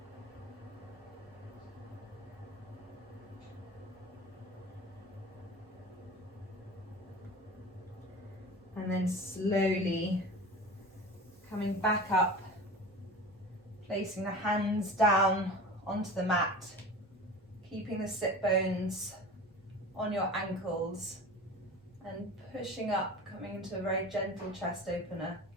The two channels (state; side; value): normal; both; correlation 0.35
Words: And then slowly coming back up, placing the hands down onto the mat, keeping the sit bones on your ankles, and pushing up, coming into a very gentle chest opener.